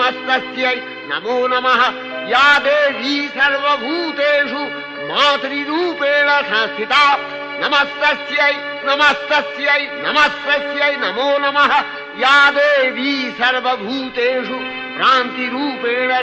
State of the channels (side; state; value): both; identical; correlation 1.00